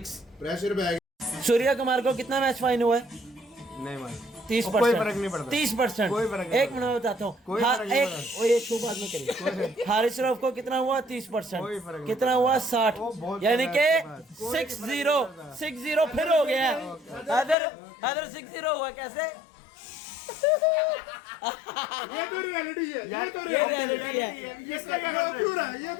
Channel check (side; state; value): right; drops out; at 17.6 s